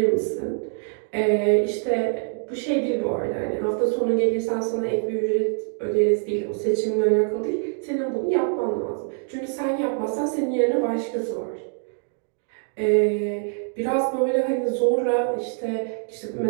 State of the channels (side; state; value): left; silent; 55 dB below the other